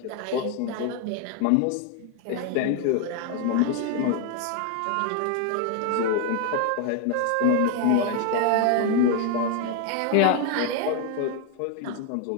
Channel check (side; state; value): both; different; correlation 0.01